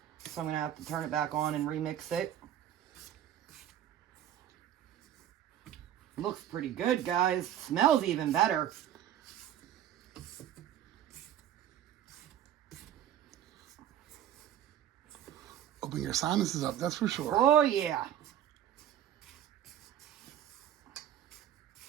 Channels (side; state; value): left; quieter; 10.8 dB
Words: So I'm going to have to turn it back on and remix it. Looks pretty good, guys. Smells even better. Open your sinuses up, that's for sure. Oh, yeah.